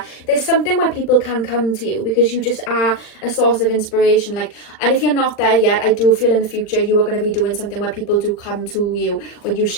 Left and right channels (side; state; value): right; late; 40 ms